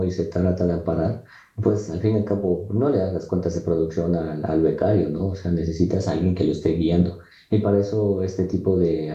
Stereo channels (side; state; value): both; identical; correlation 1.00